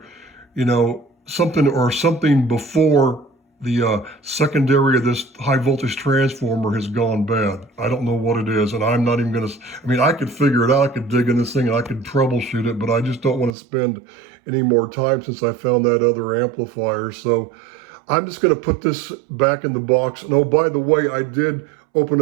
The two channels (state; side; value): drops out; left; at 13.6 s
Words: something before the secondary of this high voltage transformer has gone bad. I don't know what it is, and I'm not even going to, I could figure it out. I could dig in this thing and I could troubleshoot it, but I just don't want to spend any more time since I found that other amplifier. So I'm just going to put this back in the box. And oh, by the way, I did